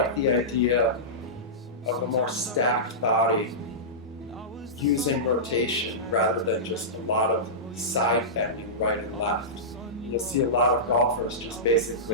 the idea of a more stacked body using rotation rather than just a lot of side bending right and left. You'll see a lot of golfers just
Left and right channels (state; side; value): normal; both; correlation -0.16